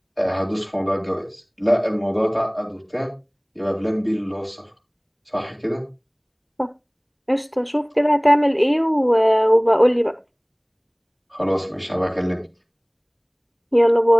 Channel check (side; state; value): both; identical; correlation 1.00